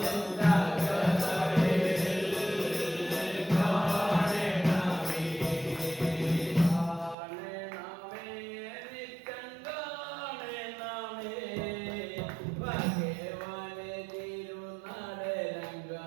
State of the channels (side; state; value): left; drops out; at 7.2 s